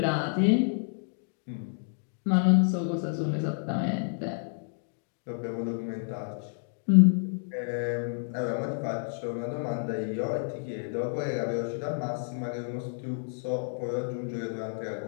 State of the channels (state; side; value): silent; right; digital silence